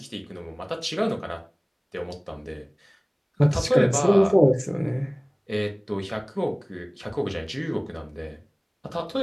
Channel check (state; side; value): identical; both; correlation 1.00